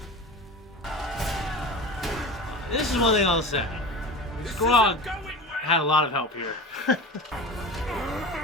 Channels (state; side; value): normal; both; correlation 0.32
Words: This is one thing I'll say. Grog had a lot of help here.